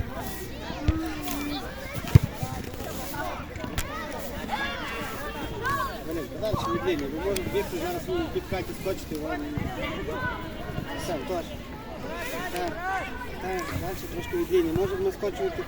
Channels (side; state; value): both; identical; correlation 1.00